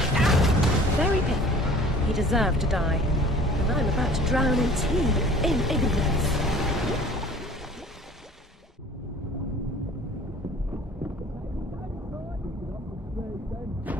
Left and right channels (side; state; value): both; normal; correlation 0.48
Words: Very painful. He deserved to die. And I'm about to drown in tea, in ignorance.